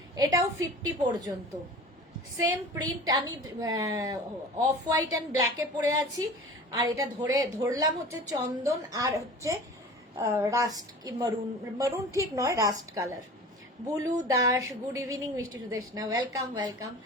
এটাও 50 পর্যন্ত সেম প্রিন্ট। আমি অফ হোয়াইট অ্যান্ড ব্ল্যাকে পরে আছি, আর এটা ধরলাম হচ্ছে চন্দন, আর হচ্ছে রাস্ট কি মারুন ঠিক নয়, rust colour. Bulu Das, good evening. মিষ্টি সুদেশনা, ওয়েলকাম ওয়েলকাম।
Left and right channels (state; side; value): normal; both; correlation 0.39